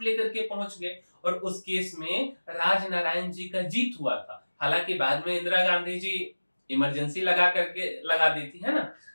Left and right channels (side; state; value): both; inverted; correlation -1.00